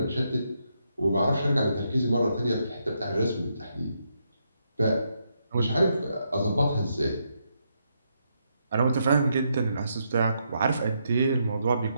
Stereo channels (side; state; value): both; inverted; correlation -0.80